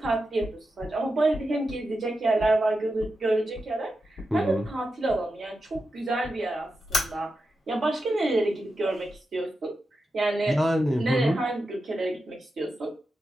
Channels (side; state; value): both; normal; correlation 0.89